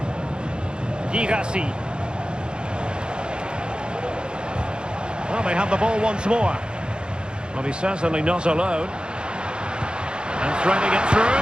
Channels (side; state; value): left; late; 0.050 ms